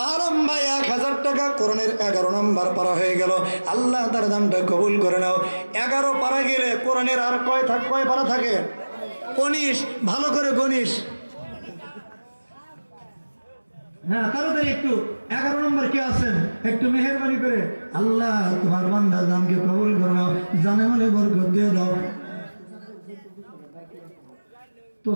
ভাই 1000 টাকা, কোরআনের 11 নম্বর পারা হয়ে গেল। আল্লাহ তার দানটা কবুল করে নাও। 11 পারা গেলে কোরআনের আর কয় পারা থাকে? 19। ভালো করে গণিস। হ্যাঁ তাড়াতাড়ি একটু। 11 নম্বর কে আছেন? একটু মেহেরবানি করে আল্লাহ তোমার বান্দার দানকে কবুল করে নাও, জানে মানে বরকত দিয়ে দাও। তো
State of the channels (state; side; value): inverted; both; correlation -1.00